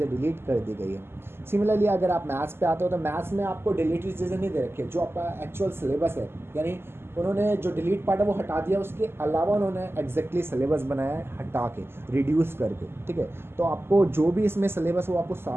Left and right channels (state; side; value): late; left; 0.12 ms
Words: डिलीट कर दी गई है। सिमिलरली अगर आप मैथ्स पे आते हो तो मैथ्स में आपको डिलीटेड चीज़ें नहीं दे रखी है, जो आपका एक्चुअल सिलेबस है, यानी उन्होंने जो डिलीट पार्ट है वो हटा दिया, उसके अलावा उन्होंने एग्जैक्टली सिलेबस बनाया है हटा के, रिड्यूस करके, ठीक है। तो आपको जो भी इसमें सिलेबस है वो आपको